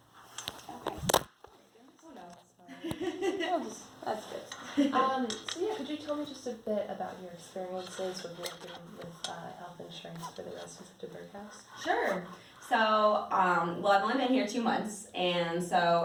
Okay. Oh no. That's good. So yeah, could you tell me just a bit about your experiences with working with health insurance for the residents of DuBourg House? Sure. So, well, I've only been here 2 months, and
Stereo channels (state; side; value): identical; both; correlation 1.00